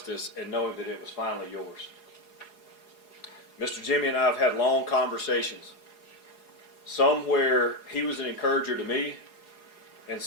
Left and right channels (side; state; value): right; late; 4.8 ms